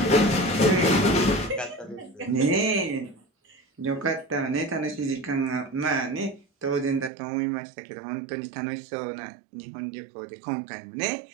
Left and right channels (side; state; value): left; drops out; at 7.1 s